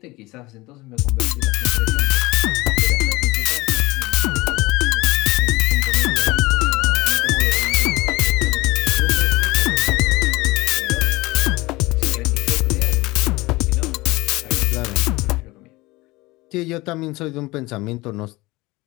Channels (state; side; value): quieter; right; 21.3 dB